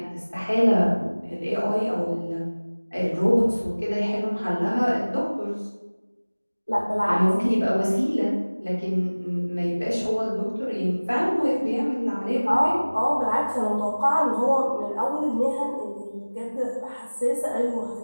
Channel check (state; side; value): inverted; both; correlation -1.00